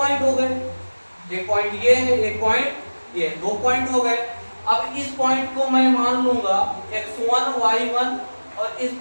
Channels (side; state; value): both; inverted; correlation -1.00